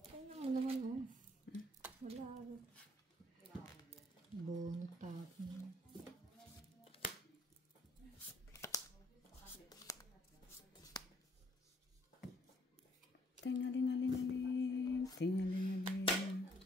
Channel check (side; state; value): both; normal; correlation 0.65